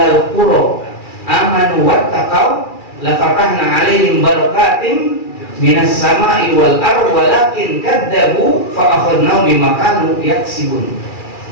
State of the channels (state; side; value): late; right; 2.4 ms